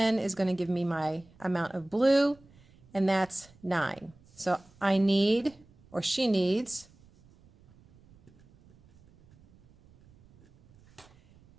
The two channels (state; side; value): noise; right; rumble, 28 dB below the sound